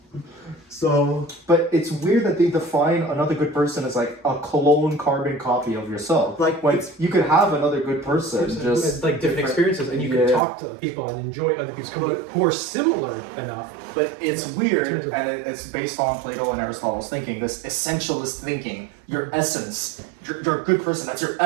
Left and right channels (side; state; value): left; drops out; at 10.4 s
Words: So, but it's weird that they define another good person as like a clone carbon copy of yourself. Like you could have another good person, just like different experiences, and you can talk to people and enjoy other people's company who are similar enough. But it's weird, and it's based on Plato and Aristotle's thinking, this essentialist thinking. Your essence, you're a good person. That's your